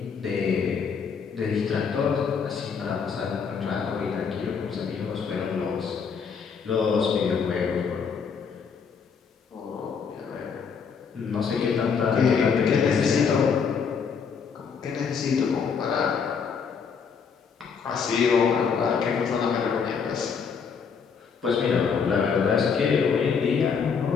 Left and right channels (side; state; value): right; quieter; 6.2 dB